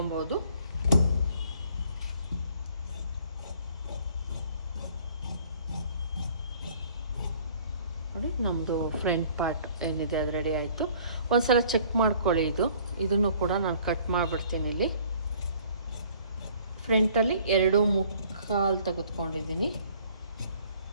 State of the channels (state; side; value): inverted; both; correlation -0.56